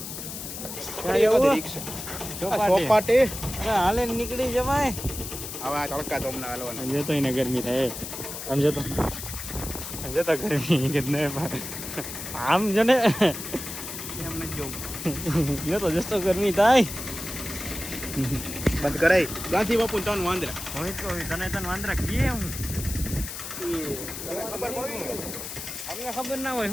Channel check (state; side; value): noise; left; hiss, 8 dB below the sound